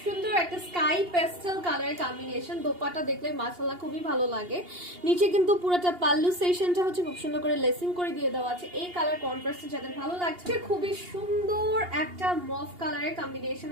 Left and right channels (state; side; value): late; left; 2.8 ms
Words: সুন্দর একটা স্কাই পেস্টেল কালারের কম্বিনেশন। দোপাট্টা দেখলে মাশাআল্লাহ খুবই ভালো লাগে। নিচে কিন্তু পুরোটা পাল্লু সেকশনটা হচ্ছে খুব সুন্দর করে লেসিং করে দিয়ে দেওয়া আছে। এই কালার কন্ট্রাস্টে যাদের ভালো লাগছে, খুবই সুন্দর একটা মফ কালারের